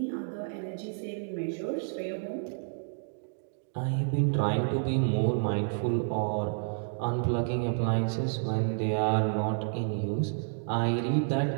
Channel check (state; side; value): silent; left; digital silence